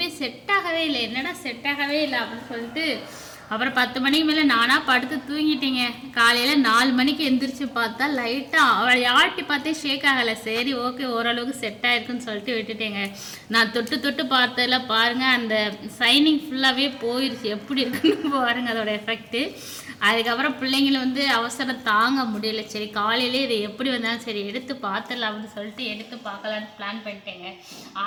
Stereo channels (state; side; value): identical; both; correlation 1.00